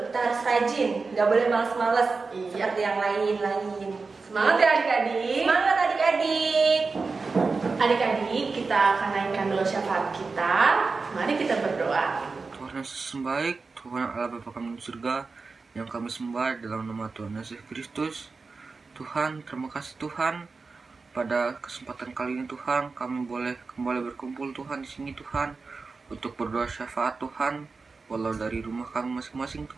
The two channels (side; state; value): left; quieter; 4.3 dB